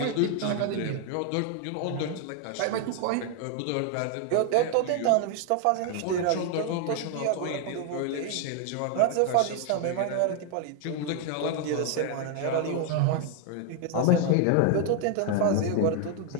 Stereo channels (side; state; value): both; different; correlation 0.00